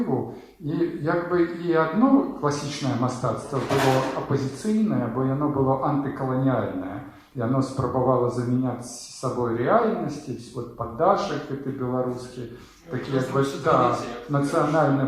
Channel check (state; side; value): identical; both; correlation 1.00